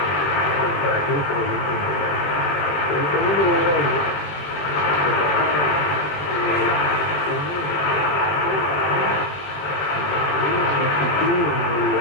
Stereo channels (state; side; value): late; right; 20 ms